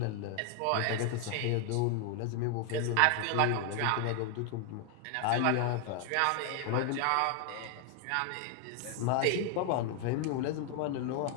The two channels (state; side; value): different; both; correlation 0.00